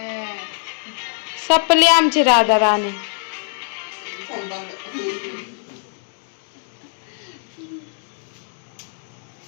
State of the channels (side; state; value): right; silent; digital silence